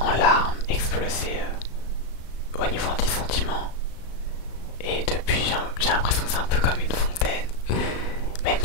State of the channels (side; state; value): right; late; 36 ms